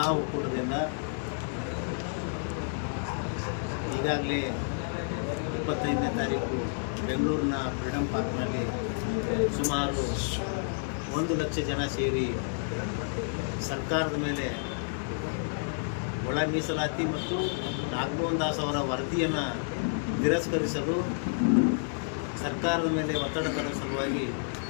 ಒಕ್ಕೂಟದಿಂದ ಈಗಾಗಲೇ 25ನೇ ತಾರೀಕು ಬೆಂಗಳೂರಿನ ಫ್ರೀಡಂ ಪಾರ್ಕ್ನಲ್ಲಿ ಸುಮಾರು 1 ಲಕ್ಷ ಜನ ಸೇರಿ ಸರ್ಕಾರದ ಮೇಲೆ ಒಳ ಮೀಸಲಾತಿ ಮತ್ತು ನಾಗಮೋಹನ್ ದಾಸ್ ಅವರ ವರದಿಯನ್ನು ತಿರಸ್ಕರಿಸಲು ಸರ್ಕಾರದ ಮೇಲೆ ಒತ್ತಡ ತರುವ ಸಲುವಾಗಿ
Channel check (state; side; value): silent; right; digital silence